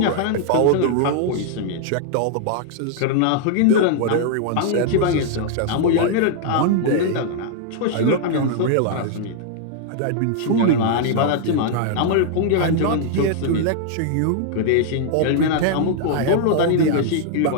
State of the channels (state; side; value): different; both; correlation -0.01